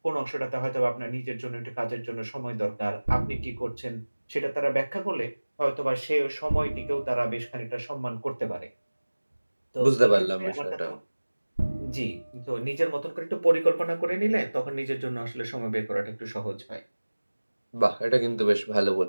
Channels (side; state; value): both; inverted; correlation -1.00